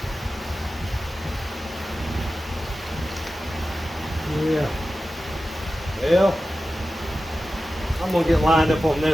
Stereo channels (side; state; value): both; normal; correlation 0.94